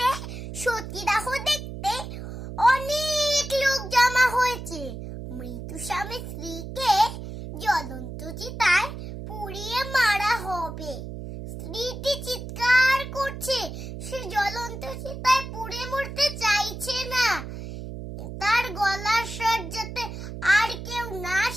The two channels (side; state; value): right; noise; hum, 9 dB below the sound